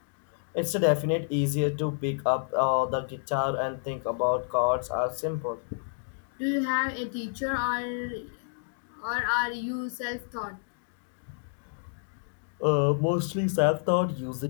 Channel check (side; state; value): right; silent; digital silence